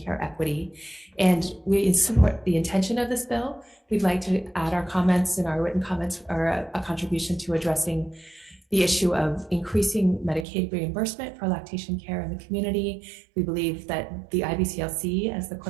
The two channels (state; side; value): drops out; left; at 10.5 s